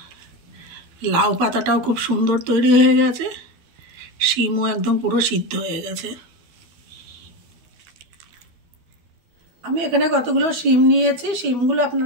লাউ পাতাটাও খুব সুন্দর তৈরি হয়ে গেছে, শিমও একদম পুরো সিদ্ধ হয়ে গেছে। আমি এখানে কতগুলো শিম নিয়েছি। শিমগুলো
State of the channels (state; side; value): late; left; 12 ms